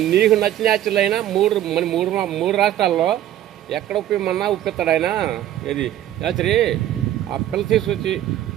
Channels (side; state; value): left; quieter; 12.3 dB